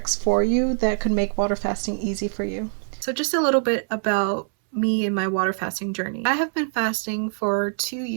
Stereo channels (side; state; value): left; silent; 63 dB below the other